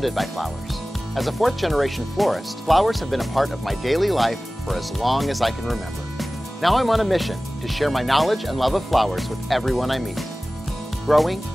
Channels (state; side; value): normal; both; correlation 0.97